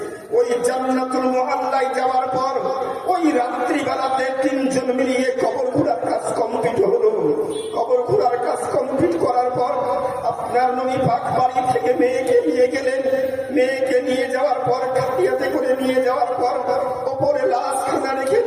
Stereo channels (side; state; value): both; identical; correlation 1.00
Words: ওই জান্নাতুল মুআল্লায় যাওয়ার পর ওই রাত্রিবেলাতে 3জন মিলিয়ে কবর ঘোরার কাজ কমপ্লিট হলো। কবর ঘোরার কাজ কমপ্লিট করার পর আপনার নবী পাক বাড়ি থেকে মেয়েকে নিয়ে গেলেন। মেয়েকে নিয়ে যাওয়ার পর খাটিয়াতে করে নিয়ে যাওয়ার পর ওপরে লাশ খানা রেখে